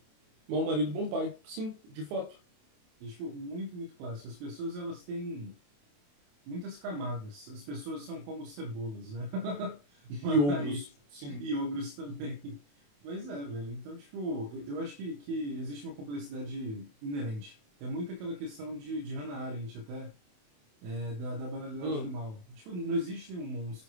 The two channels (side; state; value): left; late; 28 ms